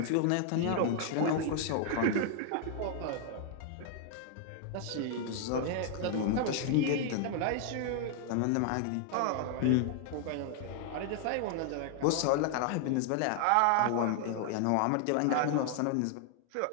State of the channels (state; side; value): different; both; correlation 0.00